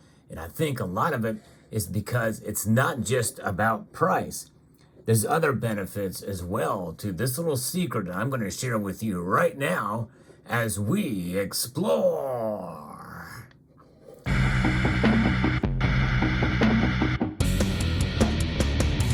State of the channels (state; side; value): identical; both; correlation 1.00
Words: And I think a lot of it is because it's not just about price. There's other benefits as well to this little secret that I'm going to share with you right now as we explore.